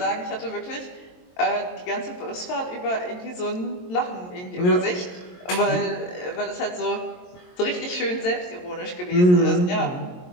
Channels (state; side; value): late; right; 22 ms